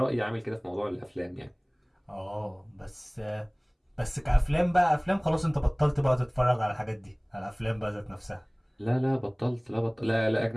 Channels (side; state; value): both; identical; correlation 1.00